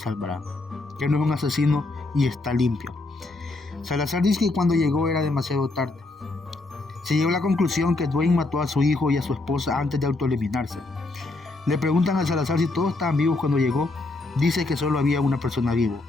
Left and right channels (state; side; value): quieter; right; 3.1 dB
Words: que no es un asesino y está limpio. Salazar dice que cuando llegó era demasiado tarde. Se llegó a la conclusión que Dwayne mató a su hijo y a su esposa antes de autoeliminarse. Le preguntan a Salazar si todos estaban vivos cuando llegó. Dice que solo había una persona vivo.